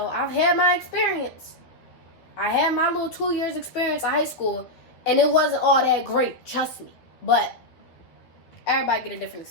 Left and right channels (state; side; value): late; right; 12 ms